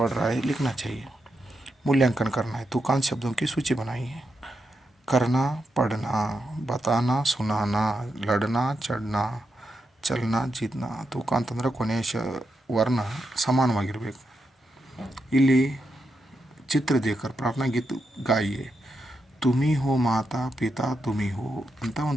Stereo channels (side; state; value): both; normal; correlation 0.84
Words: रहा है, लिखना चाहिए. मूल्यांकन करना है. तुकांत शब्दों की सूची बनाई है. करना पढ़ना, बताना सुनाना, लड़ना चढ़ना, ಚಲನ ಜಿತ್ನ. ತೂಕ ಅಂತಂದ್ರೆ ಕೊನೆಯ ವರ್ಣ ಸಮಾನವಾಗಿರಬೇಕು. ಇಲ್ಲಿ ಚಿತ್ರ ದೇಕರ್ ಪ್ರಾರ್ಥನಾ ಗೀತ್ ಗಾಯಿಯೇ ತುಮಿ ಹೋ ಮಾತಾ ಪಿತಾ ತುಮಿ ಹೋ ಅಂತ